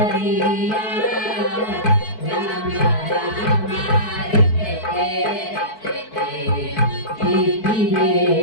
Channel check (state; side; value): late; right; 4.6 ms